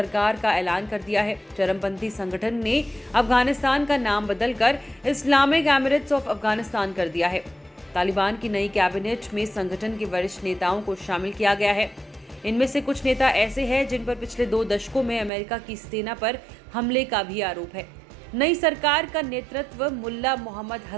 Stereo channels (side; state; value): left; drops out; at 15.3 s